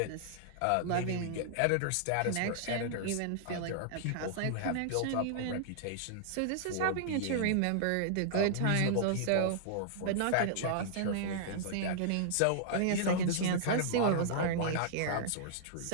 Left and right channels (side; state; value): both; different; correlation -0.01